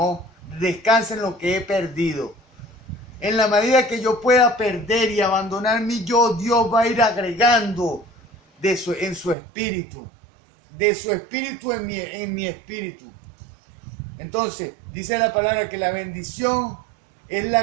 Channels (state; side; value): drops out; left; at 9.3 s